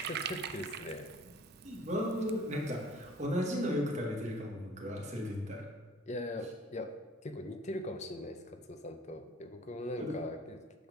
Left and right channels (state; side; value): normal; both; correlation 0.52